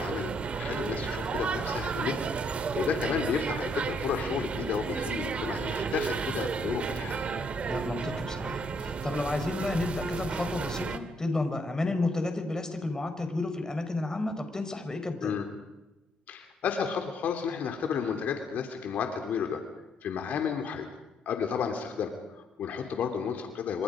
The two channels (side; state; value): both; normal; correlation 0.71